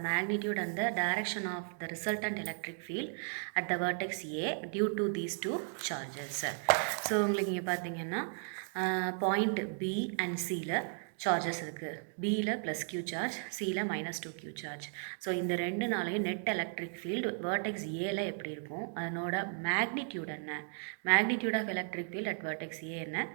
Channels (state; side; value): silent; left; 54 dB below the other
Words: magnitude and the direction of the resultant electric field at the vertex A due to these two charges. So உங்களுக்கு இங்கே பார்த்தீங்கன்னா point B and Cல charges இருக்குது. பியில் plus q charge, சியில் minus 2q charge. So இந்த ரெண்டுனாலையும் net electric field vertex ஏல எப்படி இருக்கும், அதனோட மேக்னிடியூட் என்ன, magnitude of electric field at vertex A என்ன,